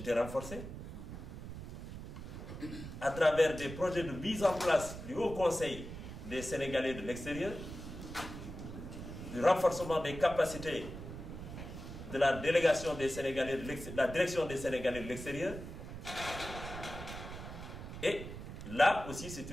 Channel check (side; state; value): right; noise; rumble, 10 dB below the sound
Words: renforcées, à travers des projets de mise en place du Haut Conseil des Sénégalais de l'extérieur, du renforcement des capacités de la délégation des Sénégalais de la direction des Sénégalais de l'extérieur. Et là aussi, c'est